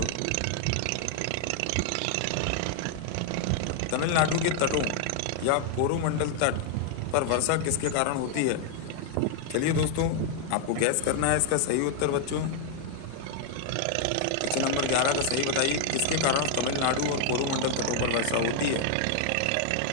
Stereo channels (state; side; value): different; both; correlation 0.00